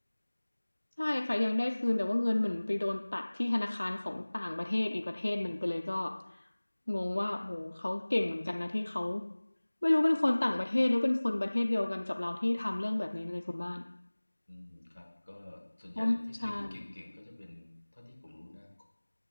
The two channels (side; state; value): both; inverted; correlation -1.00